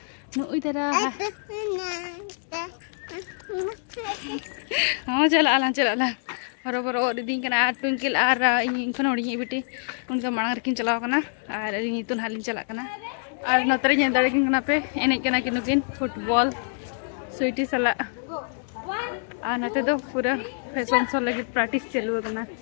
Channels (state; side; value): silent; right; digital silence